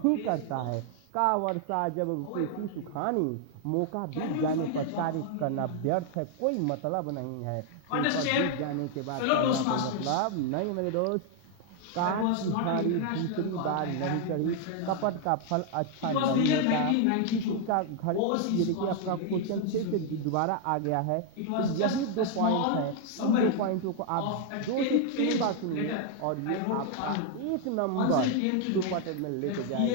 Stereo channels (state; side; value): different; both; correlation 0.00